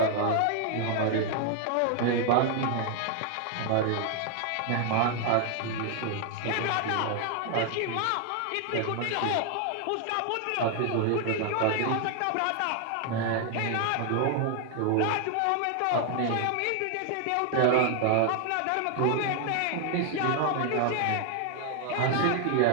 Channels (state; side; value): different; both; correlation 0.00